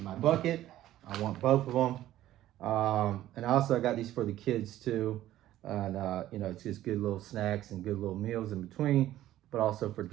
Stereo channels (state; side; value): quieter; left; 13.7 dB